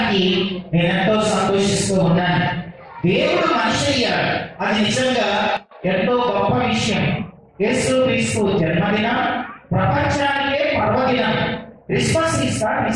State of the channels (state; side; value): identical; both; correlation 1.00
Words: నేను ఎంతో సంతోషిస్తూ ఉన్నాను. దేవుడు మనిషి అయ్యాడు, అది నిజంగా ఎంతో గొప్ప విషయం. యేసు క్రీస్తు జన్మదినం ప్రపంచానికే పర్వదినం. Christmas is the